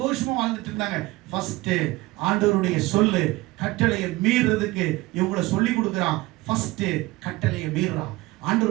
வாழ்ந்துட்டு இருந்தாங்க. ஃபர்ஸ்ட் ஆண்டவருடைய சொல்லு கட்டளையை மீறுறதுக்கு இவங்களை சொல்லி கொடுக்குறான். ஃபர்ஸ்ட் கட்டளையை மீறுறான்.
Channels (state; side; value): quieter; left; 20.4 dB